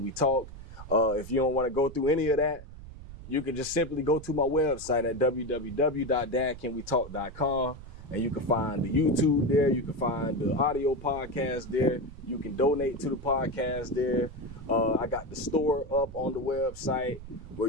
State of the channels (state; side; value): noise; right; rumble, 14 dB below the sound